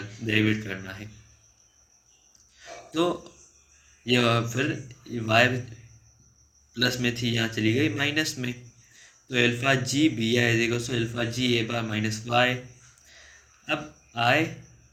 डेरिवेट करना है, तो ये फिर वाई प्लस में थी यहाँ चली गई माइनस में, तो alpha G B I equal to alpha G A bar minus Y. अब आई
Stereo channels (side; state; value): both; identical; correlation 1.00